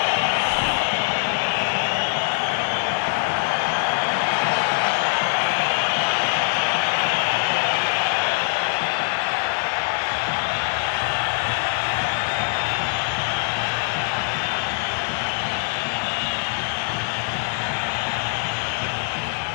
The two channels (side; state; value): right; silent; 63 dB below the other